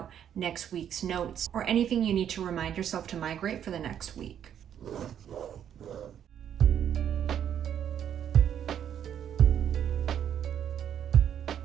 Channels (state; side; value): quieter; left; 9.4 dB